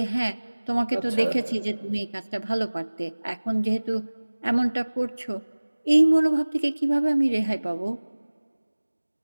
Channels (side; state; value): both; inverted; correlation -1.00